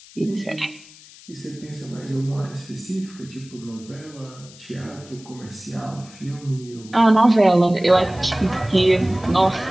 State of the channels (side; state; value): left; noise; hiss, 21 dB below the sound